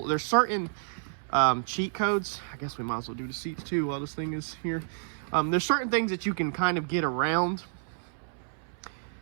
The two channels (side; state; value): left; silent; 58 dB below the other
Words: there's certain cheat codes. I guess we might as well do the seats too while this thing is here. There's certain things that you can kind of get around